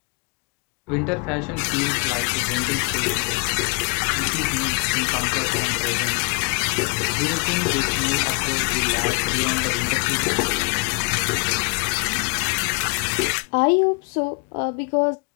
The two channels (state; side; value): quieter; right; 32.4 dB